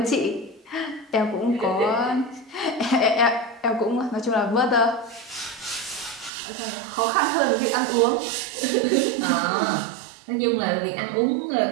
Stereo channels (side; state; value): left; drops out; at 6.3 s